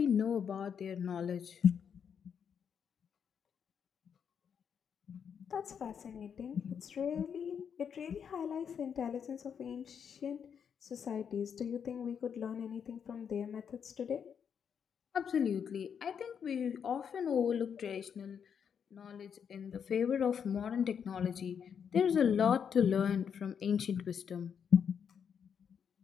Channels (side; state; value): right; quieter; 7.4 dB